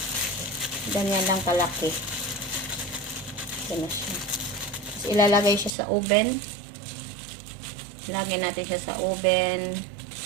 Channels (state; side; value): drops out; left; at 5.7 s